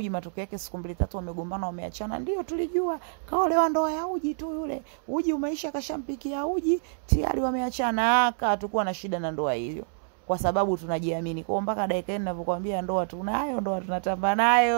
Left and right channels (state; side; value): silent; left; 60 dB below the other